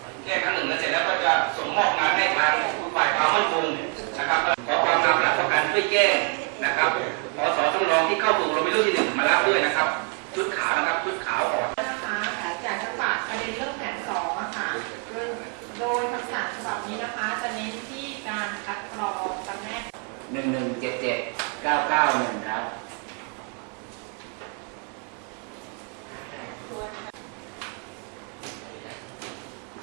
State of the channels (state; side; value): quieter; left; 39.0 dB